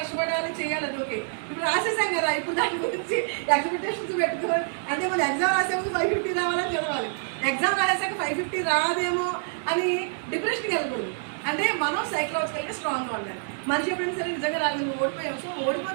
చేయాలి, అది ఓకే. ఇప్పుడు రాసేసాం కదా, ఇప్పుడు దాని గురించి ఎక్స్పెక్టేషన్స్ పెట్టుకోవాలి. అంటే మనం ఎగ్జామ్ రాసే ముందు 550 రావాలని చదవాలి, ఎగ్జామ్ రాసాక 550 రాదేమో అని డిప్రెషన్కి వెళ్ళకూడదు. అంటే మనం సైకలాజికల్గా స్ట్రాంగ్గా ఉండాలి. మనిషి ఎప్పుడైనా సరే నిజంగా రాదు, నువ్వు ఓడిపోయావు, సో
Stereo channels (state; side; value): silent; left; 60 dB below the other